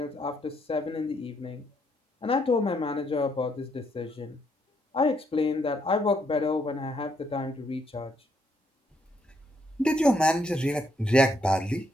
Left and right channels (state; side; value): normal; both; correlation 0.74